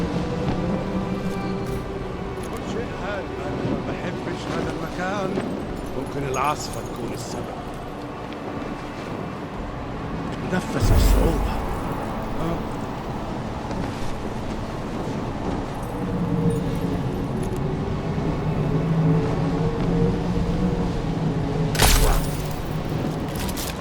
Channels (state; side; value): identical; both; correlation 1.00